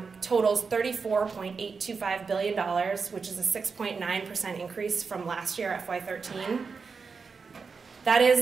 totals $34.825 billion, which is a 6.9% increase from last year, FY13. That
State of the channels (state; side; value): quieter; left; 5.1 dB